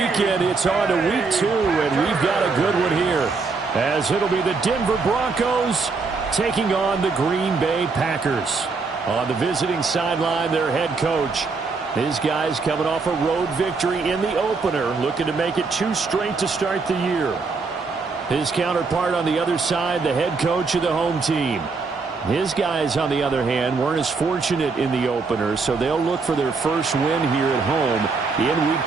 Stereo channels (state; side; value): quieter; left; 4.4 dB